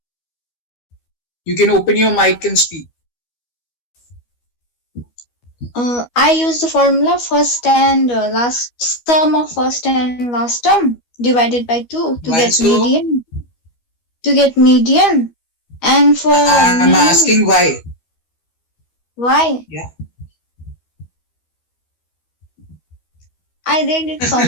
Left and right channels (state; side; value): late; right; 12 ms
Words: You can open your mic and speak. I use the formula first and last sum of first and last term divided by 2 to get Why so? median. To get median, and for I'm mean, asking why. why? Yeah. I read it